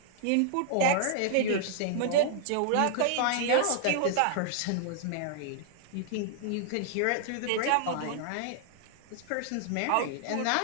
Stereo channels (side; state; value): both; different; correlation -0.01